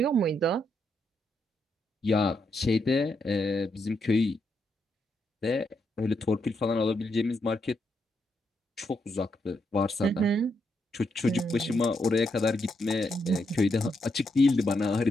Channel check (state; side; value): normal; both; correlation 0.80